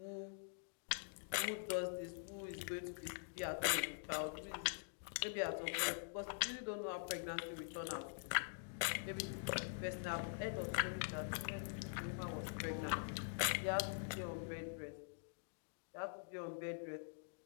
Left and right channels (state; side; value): silent; right; digital silence